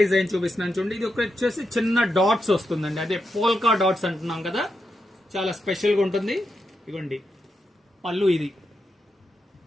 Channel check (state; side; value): normal; both; correlation 0.86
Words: డిజైన్ చూపిస్తున్నాను చూడండి. ఇది ఒక వచ్చేసి చిన్న డాట్స్ వస్తుందండి, అదే పోల్కా డాట్స్ అంటున్నాం కదా, చాలా స్పెషల్ గా ఉంటుంది. ఇవ్వండి పళ్ళు, ఇది